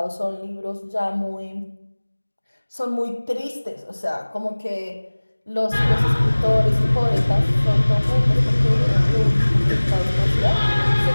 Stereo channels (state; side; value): inverted; both; correlation -1.00